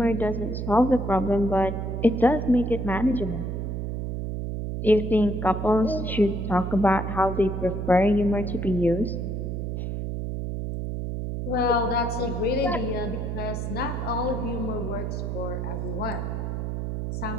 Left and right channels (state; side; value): noise; right; hum, 3 dB below the sound